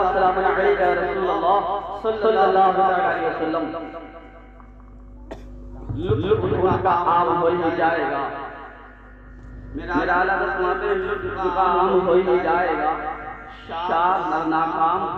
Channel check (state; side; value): identical; both; correlation 1.00